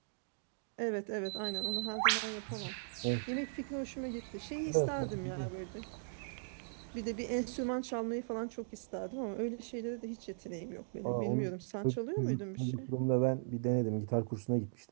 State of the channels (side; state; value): left; silent; digital silence